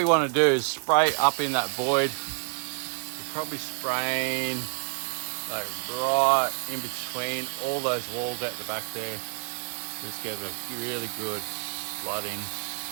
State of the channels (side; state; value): left; silent; digital silence